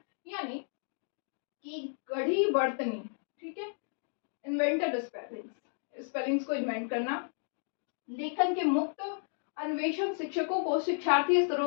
यानी कि गढ़ी बर्तनी, ठीक है, इन्वेंटेड स्पेलिंग्स, स्पेलिंग्स को इन्वेंट करना, लेखन के मुक्त अन्वेषण शिक्षकों को शिक्षार्थी स्तरों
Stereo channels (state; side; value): silent; right; digital silence